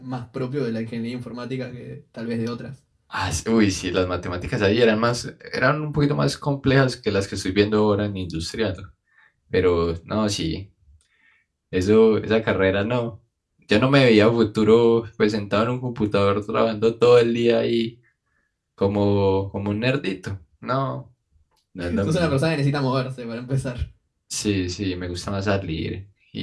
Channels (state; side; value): identical; both; correlation 1.00